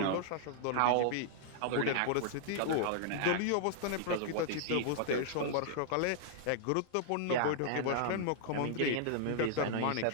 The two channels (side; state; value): both; different; correlation -0.01